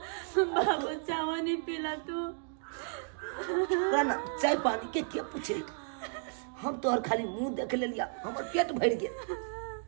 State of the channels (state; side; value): silent; left; 56 dB below the other